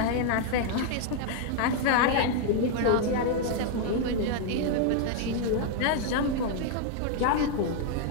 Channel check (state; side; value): different; both; correlation 0.00